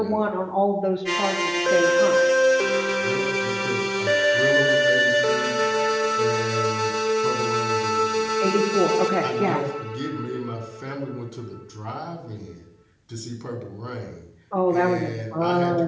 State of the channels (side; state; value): both; identical; correlation 1.00